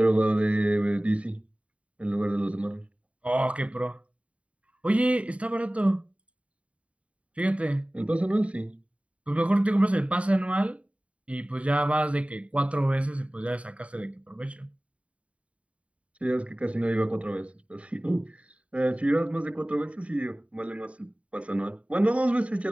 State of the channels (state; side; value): late; left; 0.064 ms